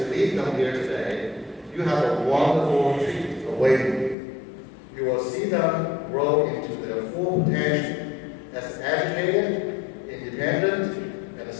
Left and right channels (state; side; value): drops out; right; at 4.2 s